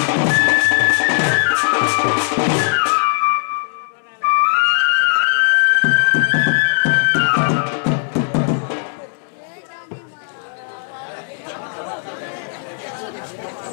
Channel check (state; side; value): silent; right; digital silence